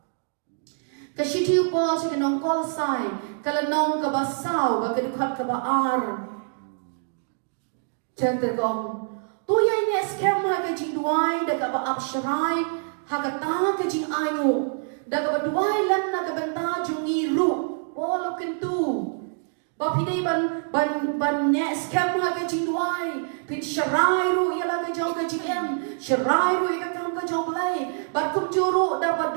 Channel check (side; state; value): left; silent; digital silence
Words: Ka shiti upol se ki nong kolasai, kala nong ka basaw ba ka dikhat ka ba ar. Tergong, tu yang ni scam haga jing duai, daga ba absharai, haga tanga ke jing ayu, daga ba duai lan naga benta jungi ru, wala kentu. Ba pidai ban ne scam haga jing duai, pin sharai ru ialah ke jong ke jing em, sharai ru ia kam ke jong play, ba kum juru daga